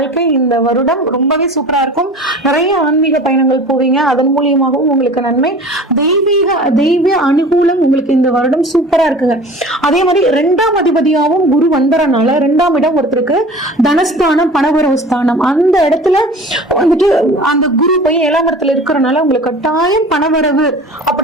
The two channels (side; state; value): both; normal; correlation 0.41